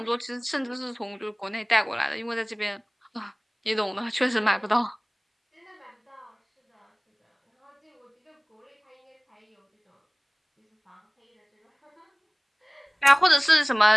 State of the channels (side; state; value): both; identical; correlation 1.00